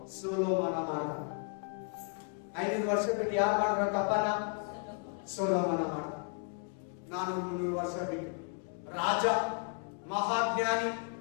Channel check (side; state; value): right; quieter; 38.7 dB